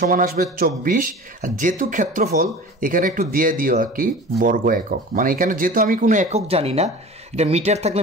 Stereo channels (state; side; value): normal; both; correlation 0.38